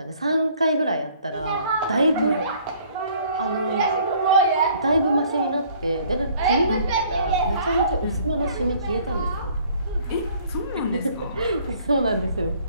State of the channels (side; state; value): both; inverted; correlation -0.58